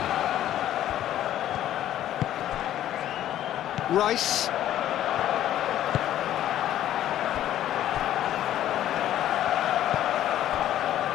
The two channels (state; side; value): quieter; right; 12.2 dB